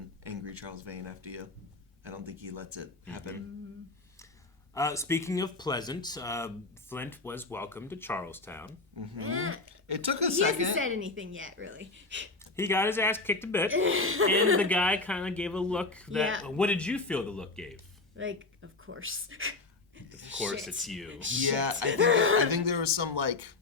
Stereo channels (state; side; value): quieter; right; 3.5 dB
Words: angry Charles Vane after you. I don't think he lets it happen. Speaking of pleasant, Flint was welcomed to Charlestown. It took a he second. He hasn't said anything yet, really. He got his ass kicked a bit, and the guy kind of gave a look that... Yeah. What did you feel the look gave? Like, of course. Of course, it's you. Yeah, I think there was some, like...